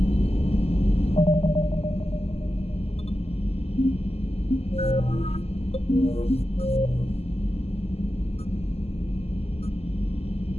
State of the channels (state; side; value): late; right; 0.29 ms